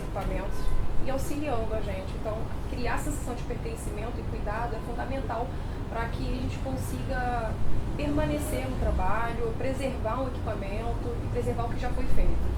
e auxiliando a gente. Então, criar essa sensação de pertencimento e cuidado é fundamental para que a gente consiga permanecer no trabalho, preservar um equipamento e preservar o que já foi feito.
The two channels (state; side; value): identical; both; correlation 1.00